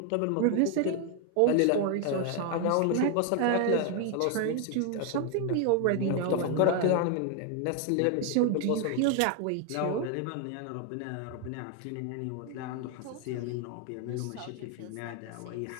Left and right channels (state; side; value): different; both; correlation 0.01